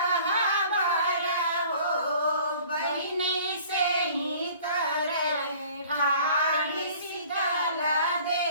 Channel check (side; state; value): both; inverted; correlation -0.50